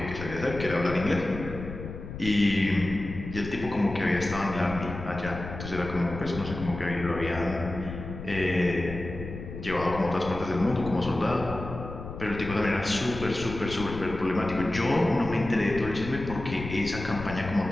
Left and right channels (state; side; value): noise; left; rumble, 9 dB below the sound